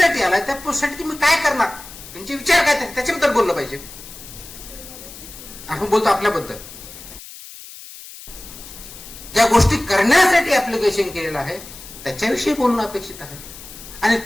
आलाय त्या पोस्टसाठी तुम्ही काय करणार, तुमचे विचार काय त्याच्याबद्दल बोललं पाहिजे. आपण बोलतो आपल्याबद्दल, ज्या गोष्टी करण्यासाठी ऍप्लिकेशन केलेलं आहे त्याच्याविषयी बोलणं अपेक्षित आहे, आणि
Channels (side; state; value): left; noise; hiss, 16 dB below the sound